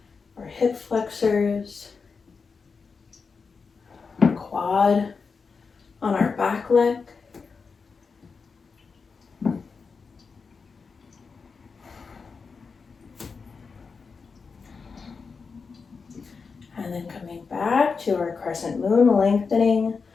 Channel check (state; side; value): quieter; right; 5.0 dB